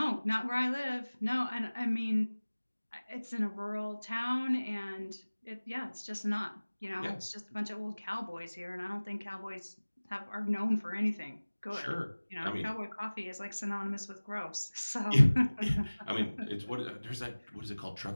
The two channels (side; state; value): both; inverted; correlation -1.00